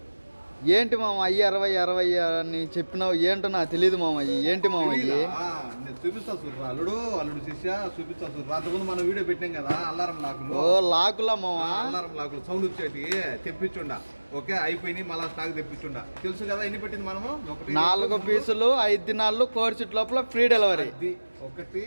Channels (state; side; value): inverted; both; correlation -1.00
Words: ఏంటి మామ అయ్యి 60 అని చెప్పినావు, ఏంటో నాకు తెలియదు మామ. ఏంటి మామ అయ్యి? నేను చూపిస్తా చూడరా, అల్లుడు శిష్య చూపిస్తా చూడరా. అంతకుముందు మనం వీడియో పెట్టాం కదా అల్లారం లాకులు. ఓ లాకులా మామ? అల్లారం లాకులు సౌండ్ వచ్చేటి తెప్పించుండా. ఓకే, అయిపోయినాయి, మళ్ళా స్టాక్ తెప్పించుండా. తెలుసు కదా ఎన్ని పెట్టింది మనము? 4 పీసులు 5 దినాలు కోర్చిట్ లోపల ఫ్రీ డెలివరీ.